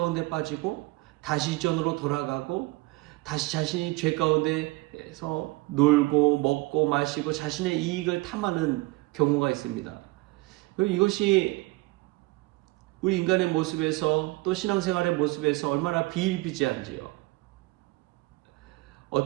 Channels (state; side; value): quieter; left; 22.2 dB